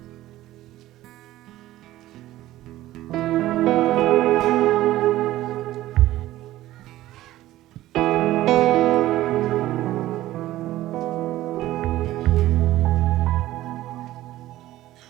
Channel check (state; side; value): quieter; left; 15.4 dB